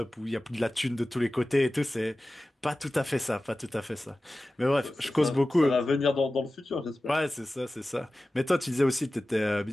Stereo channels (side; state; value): both; normal; correlation 0.96